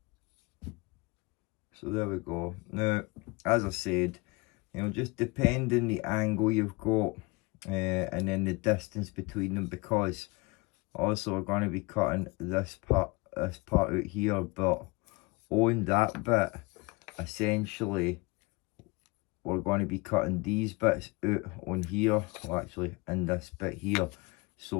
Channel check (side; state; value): right; quieter; 25.7 dB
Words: So there we go. Now, as I said, you know, just depending the angle you've got, and then the distance between them, because also we're going to be cutting this part out here, but on that bit, essentially, we're going to be cutting these bits out on here, well, actually in this bit here.